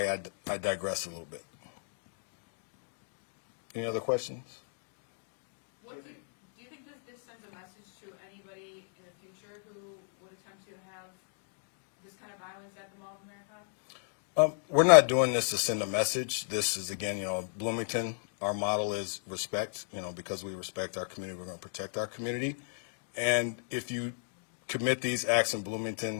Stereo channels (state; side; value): silent; right; digital silence